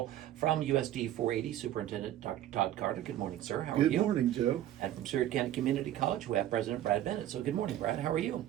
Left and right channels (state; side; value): quieter; left; 12.6 dB